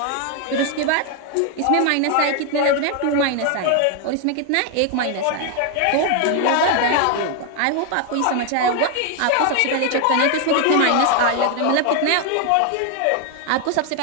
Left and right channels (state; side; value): different; both; correlation 0.01